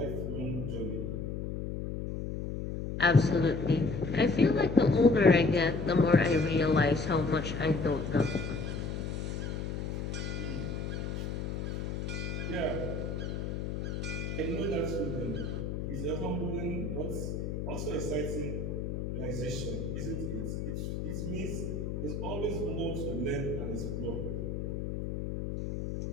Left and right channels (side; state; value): left; noise; hum, 4 dB below the sound